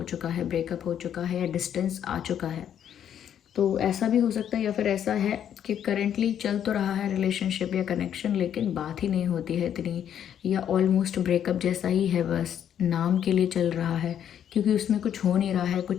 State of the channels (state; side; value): quieter; right; 9.5 dB